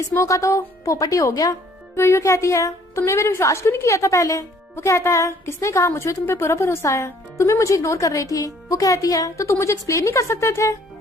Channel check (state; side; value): normal; both; correlation 0.60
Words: मो का तो पोपटी हो गया। यूयू कहती है, तुमने मेरे विश्वास क्यों नहीं किया था पहले। वो कहता है, किसने कहा, मुझे तुम पे पूरा भरोसा है, तुम्हें मुझे इग्नोर कर रही थी। वो कहती है, तो तुम मुझे एक्सप्लेन नहीं कर सकते थे।